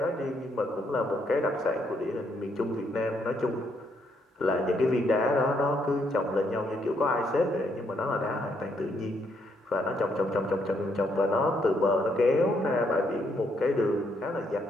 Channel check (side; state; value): both; normal; correlation 0.74